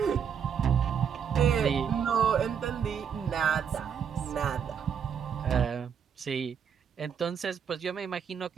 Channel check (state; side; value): quieter; left; 7.5 dB